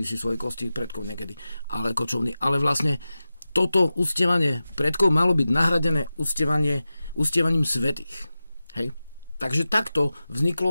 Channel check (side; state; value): both; inverted; correlation -0.94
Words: si svoje kosti predkov niekedy, ale kočovní. Ale vlastne toto uctievanie predkov malo byť nahradené uctievaním svätých. Hej? Takže takto